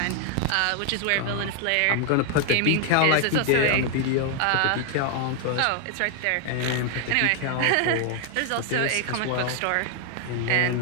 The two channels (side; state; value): both; different; correlation 0.00